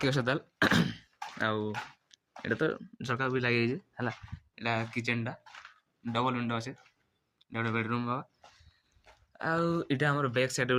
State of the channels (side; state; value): both; identical; correlation 1.00